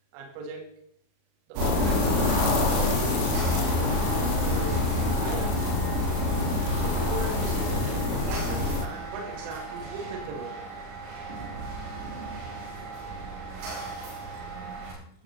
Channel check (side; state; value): left; late; 38 ms